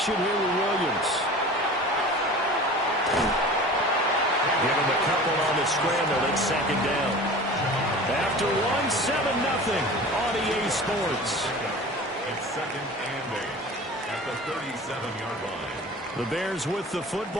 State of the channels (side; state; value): both; normal; correlation 0.38